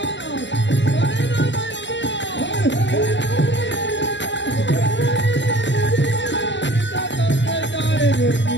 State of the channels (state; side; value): late; right; 0.53 ms